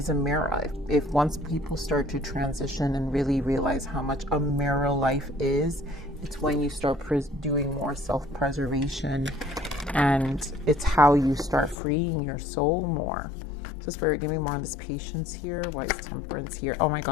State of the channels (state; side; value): drops out; right; at 11.8 s